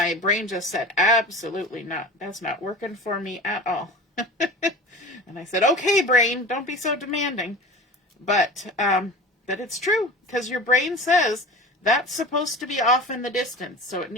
brain just said, absolutely not. That's not working for me at all. And I said, okay, brain, don't be so demanding. But it's true, because your brain says that's supposed to be off in the distance, so it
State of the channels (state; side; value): normal; both; correlation 0.37